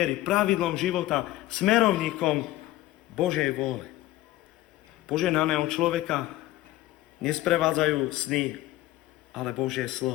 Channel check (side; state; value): right; quieter; 16.2 dB